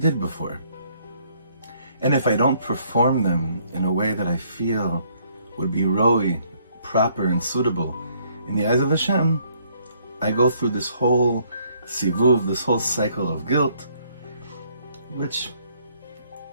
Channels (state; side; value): inverted; both; correlation -0.66